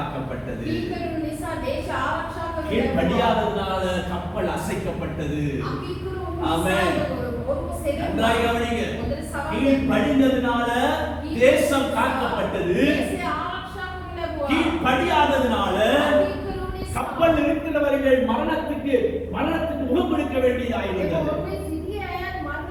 கீழ்ப்படியாததனால கப்பல் அசைக்கப்பட்டது. ஆமென். நன்றாக கவனிங்க. கீழ்ப்படிந்ததனால தேசம் காக்கப்பட்டது. கீழ்ப்படியாததனால கப்பல் இருக்கிறவர்கள் மரணத்துக்கு முகம் கொடுக்க வேண்டியதாயிருந்தது.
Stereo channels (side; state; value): both; identical; correlation 1.00